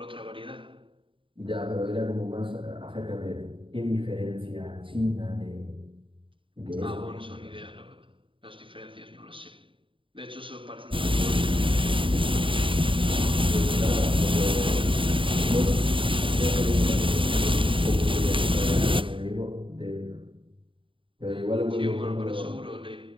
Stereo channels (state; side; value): late; left; 0.25 ms